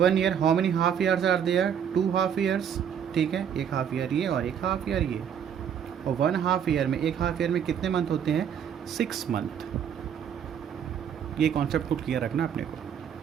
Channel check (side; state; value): left; quieter; 8.4 dB